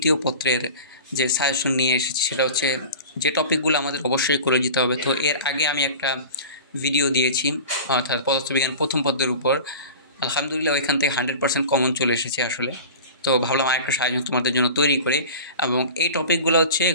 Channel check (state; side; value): inverted; both; correlation -0.36